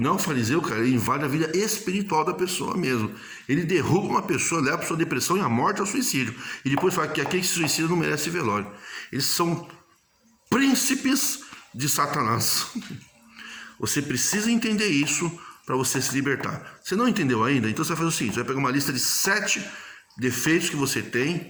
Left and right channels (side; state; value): both; identical; correlation 1.00